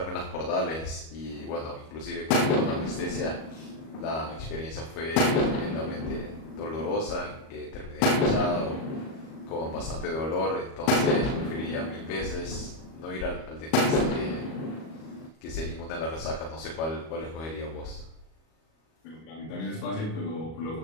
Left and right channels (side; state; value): right; late; 37 ms